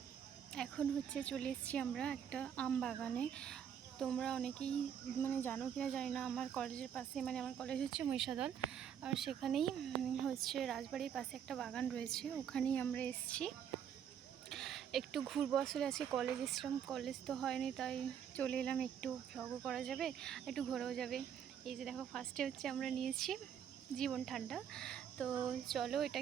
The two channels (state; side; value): quieter; left; 8.6 dB